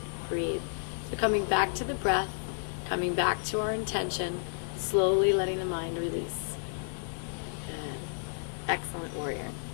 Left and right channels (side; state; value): right; silent; digital silence